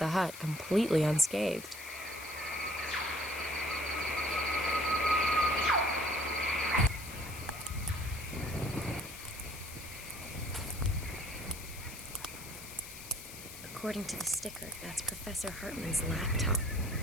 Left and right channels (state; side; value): noise; left; hiss, 13 dB below the sound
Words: hut completely unscathed. According to the sticker, that's Professor Hartman's laptop.